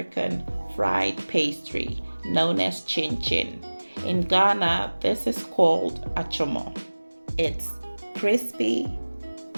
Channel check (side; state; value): both; inverted; correlation -1.00